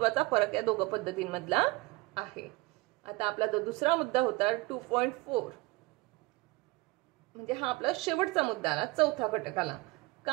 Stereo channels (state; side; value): quieter; left; 23.0 dB